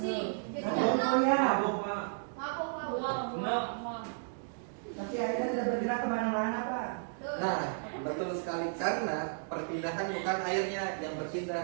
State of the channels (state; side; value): silent; left; digital silence